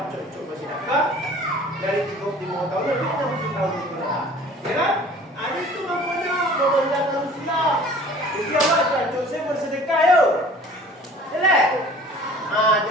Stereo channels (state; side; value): normal; both; correlation 0.48